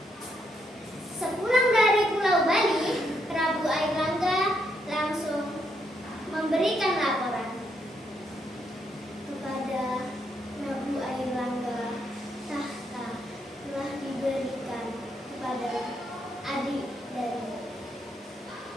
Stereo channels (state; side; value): normal; both; correlation 0.77